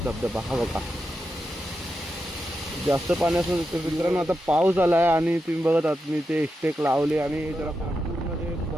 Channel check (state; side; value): normal; both; correlation 0.87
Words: धबधबा हा बघा. जास्त पाणी असून मित्रांनो आता पाऊस आला आहे आणि तुम्ही बघत आहात मी ते स्टेक लावले आणि जरा पूर्ण ते